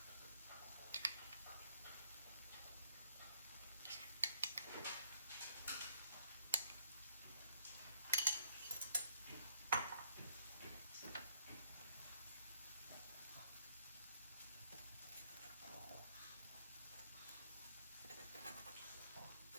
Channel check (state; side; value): inverted; both; correlation -0.66